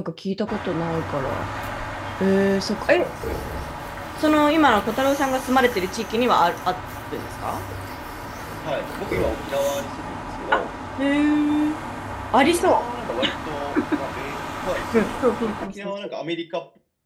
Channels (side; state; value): both; identical; correlation 1.00